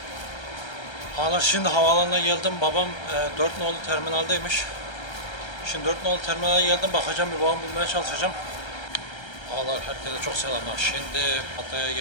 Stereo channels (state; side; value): late; right; 1.3 ms